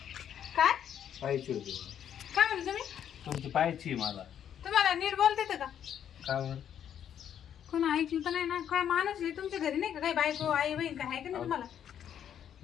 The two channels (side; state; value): right; quieter; 9.4 dB